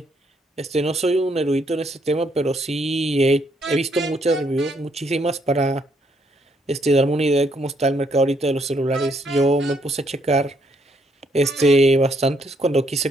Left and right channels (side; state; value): both; normal; correlation 0.72